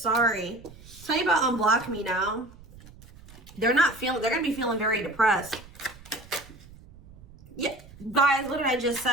Tell you about unblock me now. They're gonna be feeling very depressed. Yeah, guys, what did I just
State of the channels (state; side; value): noise; right; rumble, 20 dB below the sound